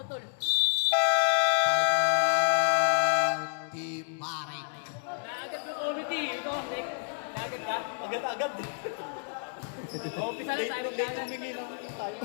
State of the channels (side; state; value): right; silent; digital silence